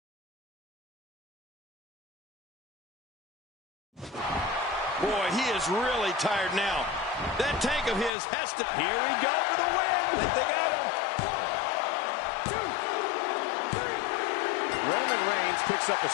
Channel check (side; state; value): right; drops out; at 8.1 s